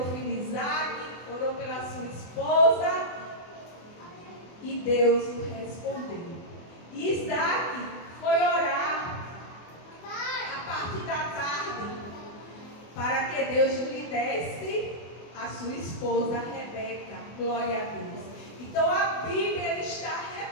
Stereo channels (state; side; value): late; right; 24 ms